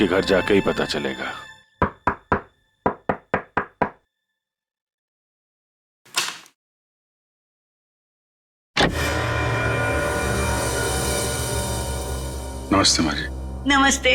घर जाके ही पता चलेगा। नमस्ते माँ जी। नमस्ते।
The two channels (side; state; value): both; identical; correlation 1.00